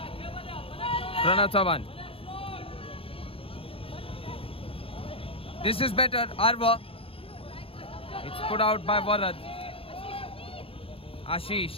Pranav Chavan. This is better. Arva. It's put out by Varad.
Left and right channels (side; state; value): right; late; 0.27 ms